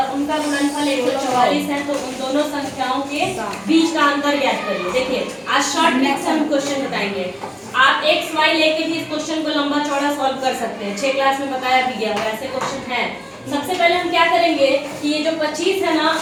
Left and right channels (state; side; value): identical; both; correlation 1.00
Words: उनका गुणनफल 144 है, तो उन दोनों संख्याओं के बीच का अंतर ज्ञात करिए। देखिए आज शॉर्ट ट्रिक से हम क्वेश्चन बताएंगे। आप एक्स वाई लेके भी इस क्वेश्चन को लंबा चौड़ा सॉल्व कर सकते हैं, 6 क्लास में बताया भी गया है, ऐसे क्वेश्चन है। सबसे पहले हम क्या करेंगे कि ये जो 25 है ना